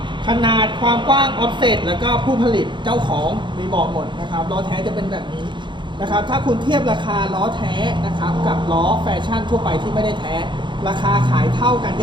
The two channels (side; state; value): left; late; 0.23 ms